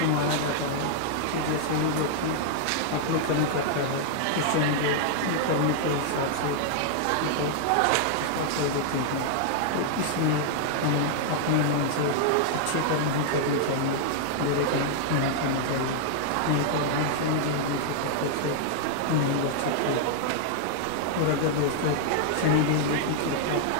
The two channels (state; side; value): different; both; correlation -0.01